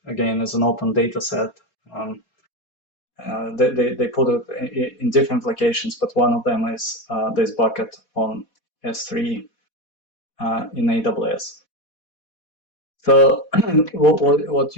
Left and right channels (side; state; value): right; late; 4.1 ms